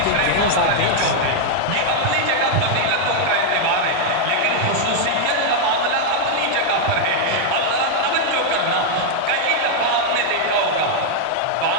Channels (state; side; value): different; both; correlation -0.01